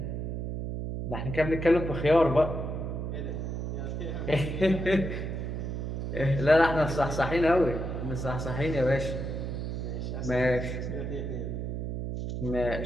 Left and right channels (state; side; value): noise; right; hum, 4 dB below the sound